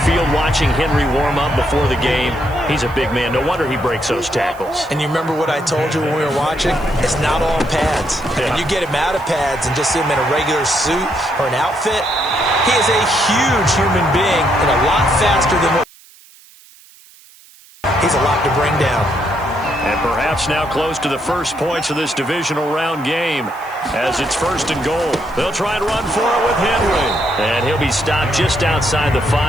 watching Henry warm up before the game. He's a big man. No wonder he breaks those tackles. And you remember what I told you when we were watching? It's not all pads. Yeah. When you get him out of pads and just see him in a regular suit or an outfit, he is a huge human being and a lot faster than what he's a lot to bring down. And perhaps now close to the first points of this divisional round game as it's 1st and goal. They'll try and run for it with Henry. And he'll be stopped just outside the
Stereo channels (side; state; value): right; noise; hiss, 25 dB below the sound